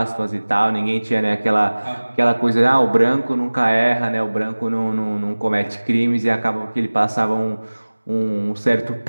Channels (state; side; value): inverted; both; correlation -1.00